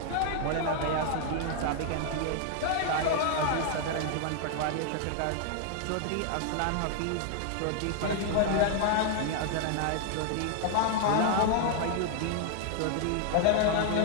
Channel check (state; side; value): different; both; correlation 0.00